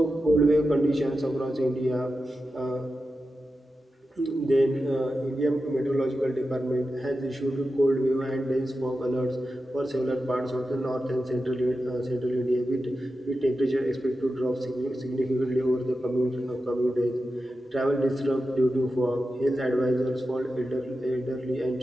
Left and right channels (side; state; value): both; normal; correlation 0.91